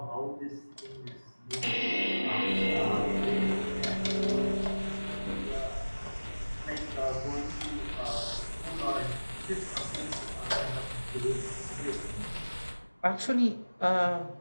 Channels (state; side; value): inverted; both; correlation -1.00